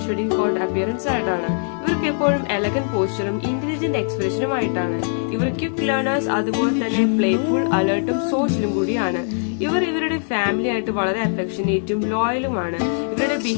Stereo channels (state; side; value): silent; right; digital silence